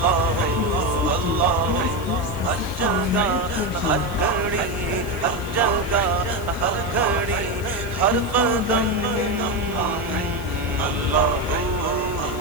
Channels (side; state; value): left; noise; hiss, 19 dB below the sound